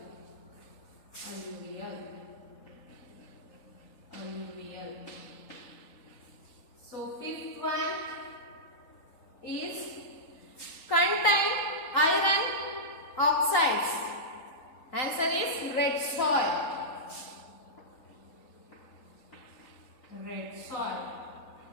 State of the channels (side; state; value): right; late; 3.9 ms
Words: Alluvial. Alluvial. So fifth one is contain iron oxides. Answer is red soil. Red soil.